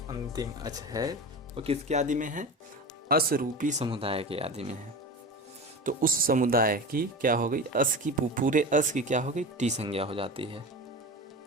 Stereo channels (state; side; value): normal; both; correlation 0.29